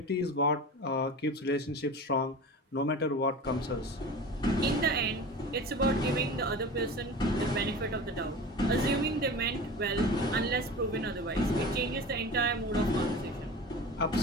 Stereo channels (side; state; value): both; normal; correlation 0.34